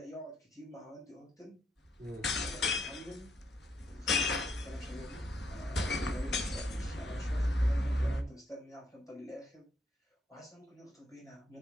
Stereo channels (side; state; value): both; normal; correlation 0.75